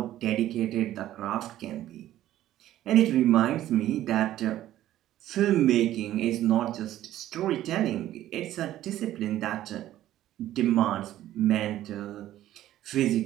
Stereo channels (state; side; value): quieter; left; 13.5 dB